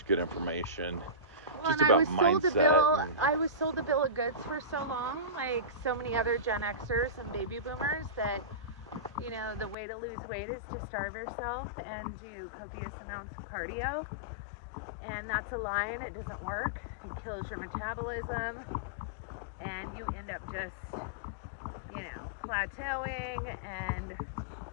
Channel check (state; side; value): drops out; right; at 9.8 s